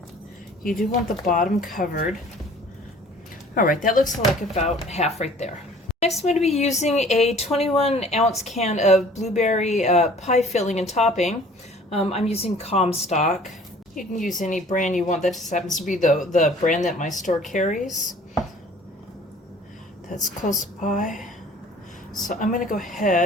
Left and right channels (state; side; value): normal; both; correlation 0.51